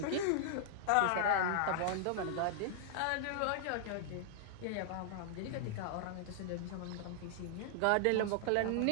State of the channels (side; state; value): both; different; correlation 0.00